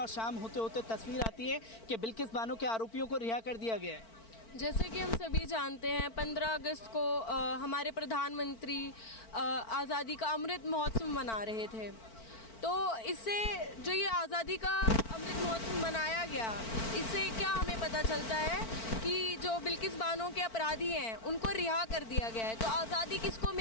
शाम होते होते तस्वीर आती है कि बिल्किस बानो के आरोपियों को रिहा कर दिया गया है। जैसे कि हम सभी जानते हैं, 15 अगस्त को हमारे प्रधानमंत्री आज़ादी का अमृत महोत्सव मना रहे थे। तो इससे जो ये आज़ादी का अमृत महोत्सव मनाया गया, इससे क्या हमें पता चलता है कि जो बिल्किस बानो के अपराधी हैं उनको रिहा कर दिया गया है। तो आज़ादी किसको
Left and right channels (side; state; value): right; late; 4.5 ms